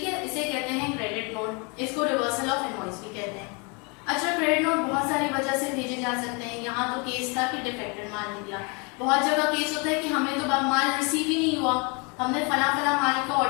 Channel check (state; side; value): quieter; right; 32.0 dB